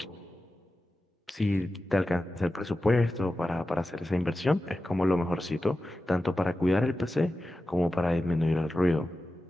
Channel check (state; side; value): normal; both; correlation 0.93